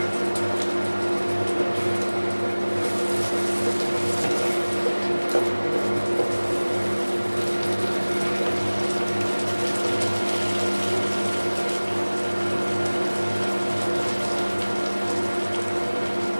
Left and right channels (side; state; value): both; inverted; correlation -1.00